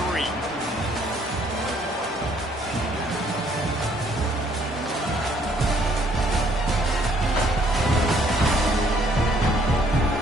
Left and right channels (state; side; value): normal; both; correlation 0.64